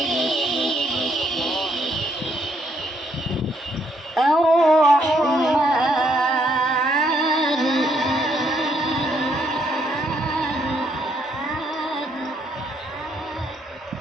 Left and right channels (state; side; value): normal; both; correlation 0.72